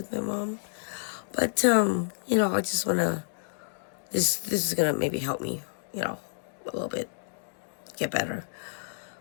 my mom, but I just wanna. This is gonna maybe help me, a little bit get better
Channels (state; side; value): silent; right; digital silence